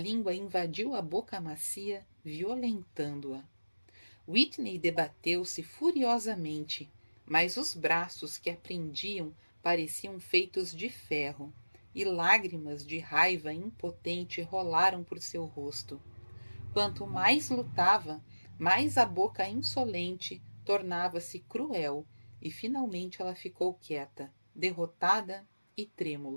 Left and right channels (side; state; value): both; inverted; correlation -1.00